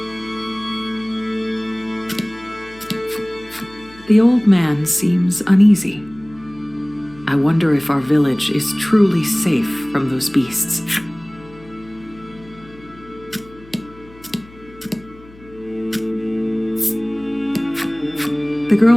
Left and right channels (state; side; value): noise; left; hum, 23 dB below the sound